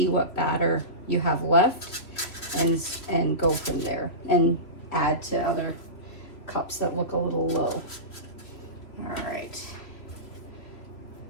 what batter you have left and go from there and add to other cups that look a little low. All right.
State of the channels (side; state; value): right; late; 3.0 ms